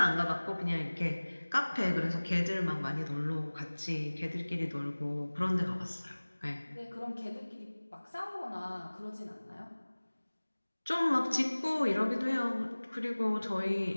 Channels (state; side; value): inverted; both; correlation -1.00